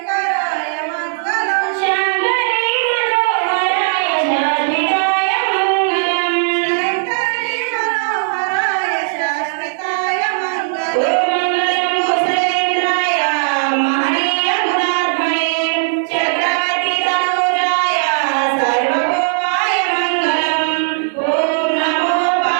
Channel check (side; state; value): left; silent; digital silence